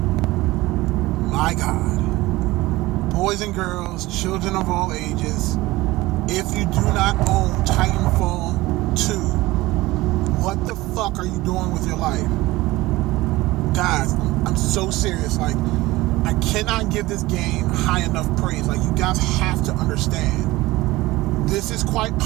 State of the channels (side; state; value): left; quieter; 19.2 dB